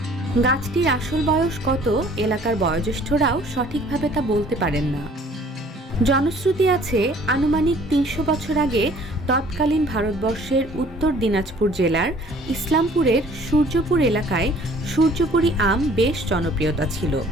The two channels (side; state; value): both; normal; correlation 0.54